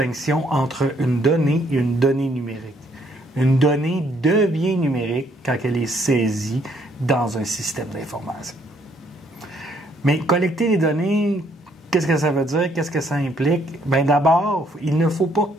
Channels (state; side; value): normal; both; correlation 0.68